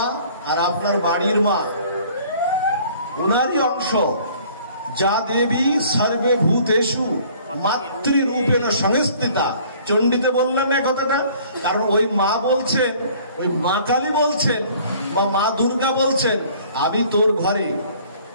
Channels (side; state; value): both; inverted; correlation -0.54